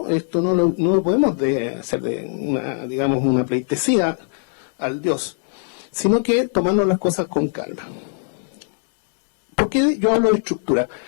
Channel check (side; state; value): right; silent; digital silence